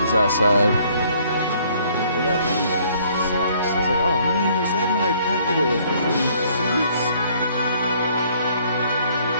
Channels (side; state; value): both; inverted; correlation -0.62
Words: outside. They got rained on. It sucks. I was like, oh man, is that my packet of freaking seeds?